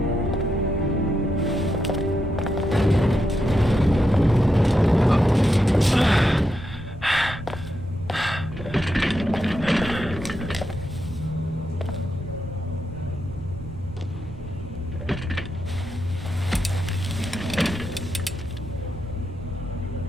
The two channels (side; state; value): both; normal; correlation 0.84